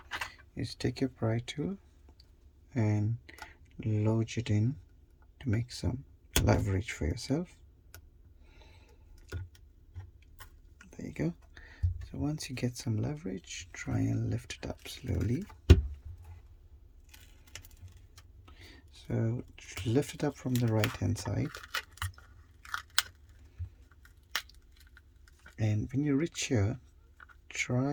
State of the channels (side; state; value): both; identical; correlation 1.00